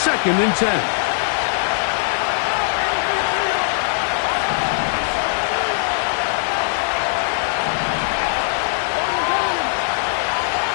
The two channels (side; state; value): right; silent; digital silence